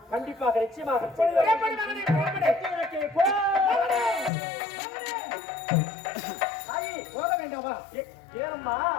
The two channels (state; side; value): drops out; right; at 4.3 s